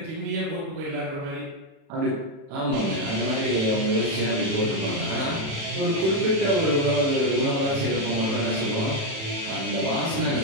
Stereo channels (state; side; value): late; left; 36 ms